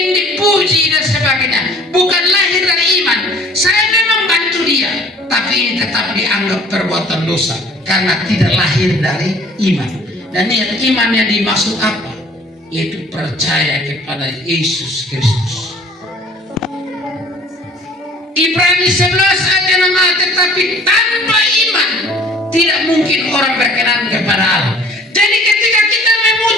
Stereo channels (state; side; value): normal; both; correlation 0.53